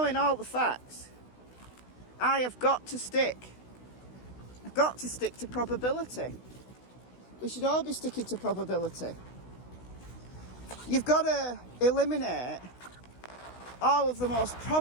all the facts, I have got to stick. I've got to stick to probability. We should all be sticking to probability. You've got to eliminate all of the most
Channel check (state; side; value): late; right; 16 ms